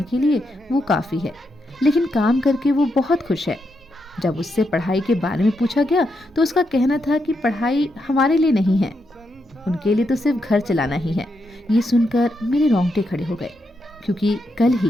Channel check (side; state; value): both; normal; correlation 0.82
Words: के लिए वो काफी है, लेकिन काम करके वो बहुत खुश है। जब उससे पढ़ाई के बारे में पूछा गया तो उसका कहना था कि पढ़ाई हमारे लिए नहीं है, उनके लिए तो सिर्फ घर चलाना ही है। ये सुनकर मेरे रोंगटे खड़े हो गए, क्योंकि कल